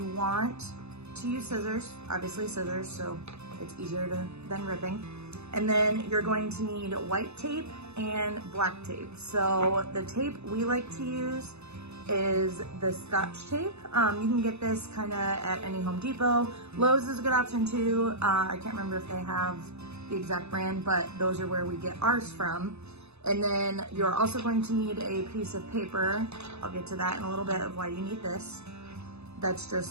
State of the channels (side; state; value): left; late; 0.80 ms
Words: want to use scissors, obviously scissors, so it's easier than ripping. And then you're going to need white tape and black tape. So the tape we like to use is the Scotch tape. You can get this kind of at any Home Depot. Lowe's is a good option too. I can't remember if they have the exact brand, but those are where we get ours from. And then you're also going to need a piece of paper. I'll get to that in a little bit of why you need this. That's